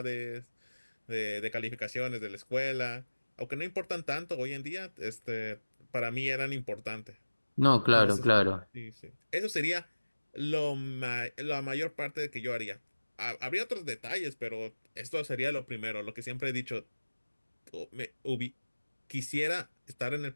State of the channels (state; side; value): inverted; both; correlation -1.00